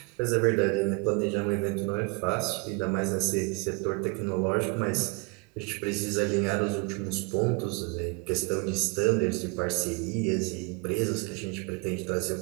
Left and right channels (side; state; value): left; quieter; 29.5 dB